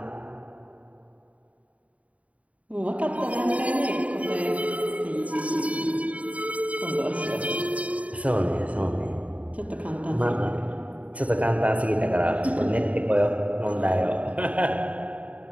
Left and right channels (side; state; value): left; late; 0.067 ms